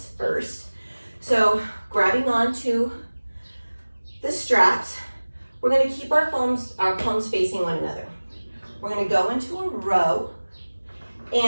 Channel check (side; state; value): both; inverted; correlation -1.00